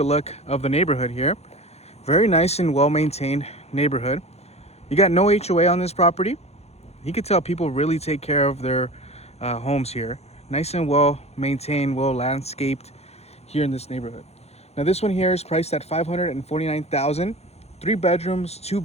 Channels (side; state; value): right; late; 0.31 ms